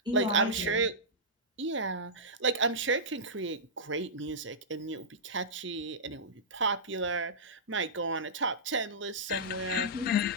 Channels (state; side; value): normal; both; correlation -0.15